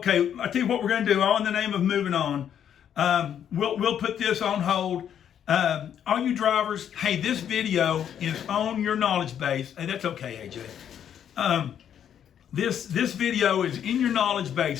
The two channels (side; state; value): right; quieter; 9.2 dB